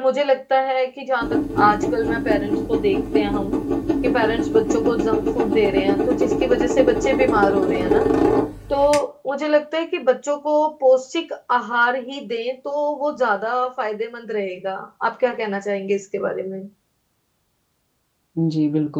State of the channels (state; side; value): identical; both; correlation 1.00